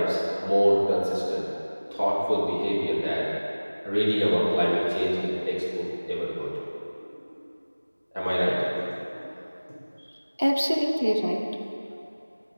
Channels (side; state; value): both; inverted; correlation -1.00